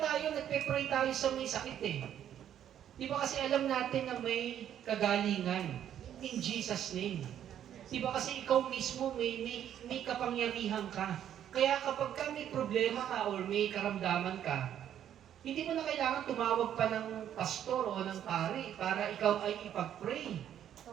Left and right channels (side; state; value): left; quieter; 10.3 dB